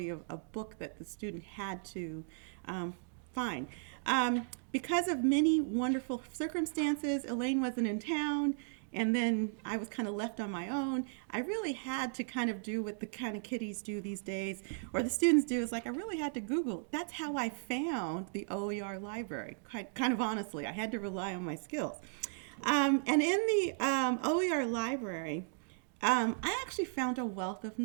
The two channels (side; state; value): left; silent; digital silence